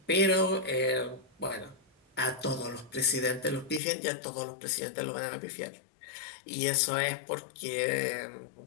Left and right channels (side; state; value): right; drops out; at 3.8 s